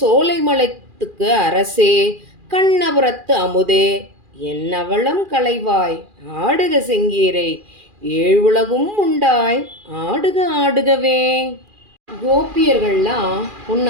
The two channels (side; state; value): left; late; 2.4 ms